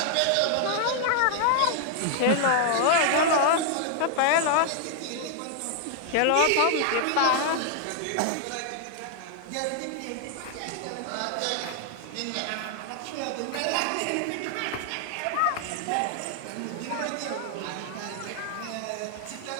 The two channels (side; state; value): both; different; correlation 0.00